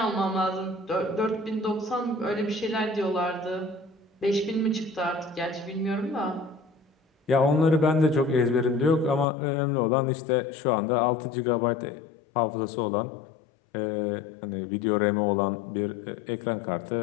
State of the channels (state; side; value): drops out; right; at 9.2 s